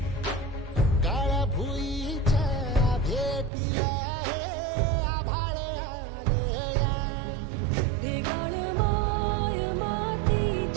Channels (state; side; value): drops out; left; at 3.5 s